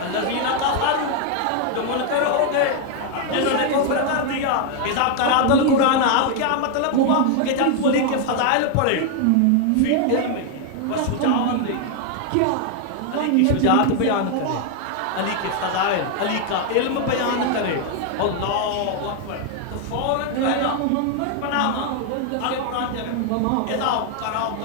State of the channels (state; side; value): different; both; correlation 0.00